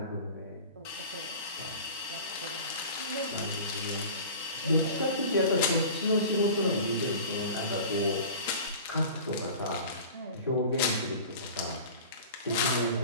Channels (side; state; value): both; inverted; correlation -0.39